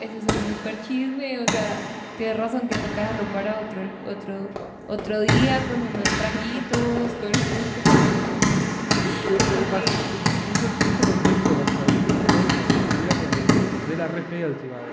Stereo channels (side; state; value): both; identical; correlation 1.00